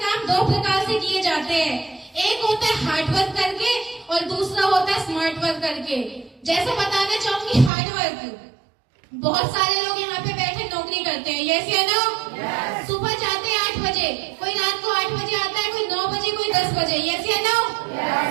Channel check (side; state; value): left; drops out; at 7.7 s